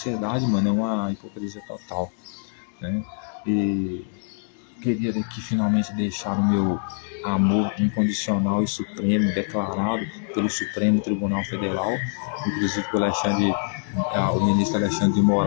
mano, é uma hipocrisia total, né? E queria aqui finalmente deixar o meu amor incondicional e supremo declarado pelo Supremo Tribunal Federal, inclusive pelo o ministro Alexandre de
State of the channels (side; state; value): right; silent; digital silence